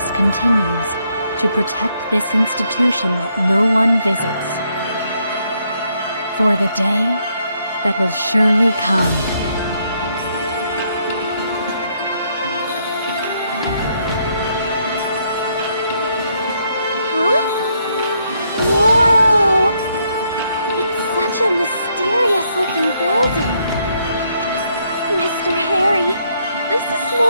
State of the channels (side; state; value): both; inverted; correlation -0.74